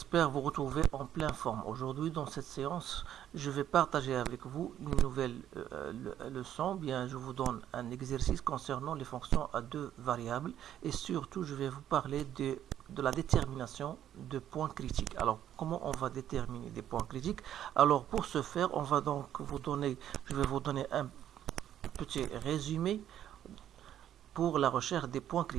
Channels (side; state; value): left; quieter; 10.9 dB